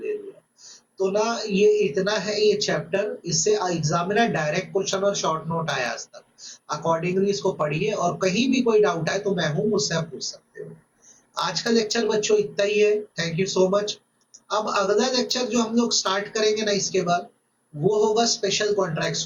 लिया। तो ना ये इतना है ये चैप्टर, इससे एग्जामिनर डायरेक्ट क्वेश्चन और शॉर्ट नोट आया आज तक। अकॉर्डिंगली इसको पढ़िए और कहीं भी कोई डाउट आए तो मैं हूं, मुझसे आप पूछ सकते हो। आज का लेक्चर बच्चों इतना ही है, थैंक यू सो मच। अब अगला लेक्चर जो हम लोग स्टार्ट करेंगे ना इसके बाद, वो होगा स्पेशल कॉन्ट्रैक्ट्स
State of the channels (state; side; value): identical; both; correlation 1.00